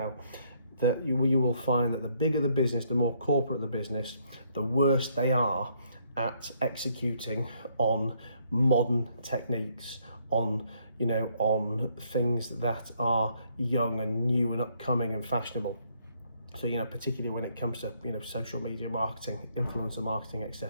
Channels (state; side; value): inverted; both; correlation -0.69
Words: that you will find that the bigger the business, the more corporate the business, the worse they are at executing on modern techniques, on things that are young and new and upcoming and fashionable. So particularly when it comes to social media marketing, influencer marketing,